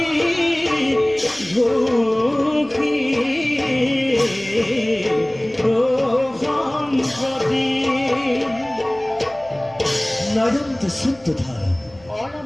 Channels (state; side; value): noise; left; hum, 26 dB below the sound